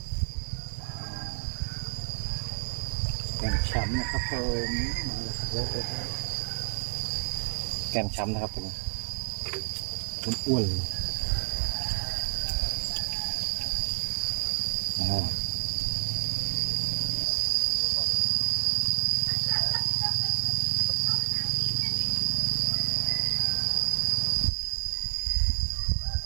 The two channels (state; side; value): silent; left; 59 dB below the other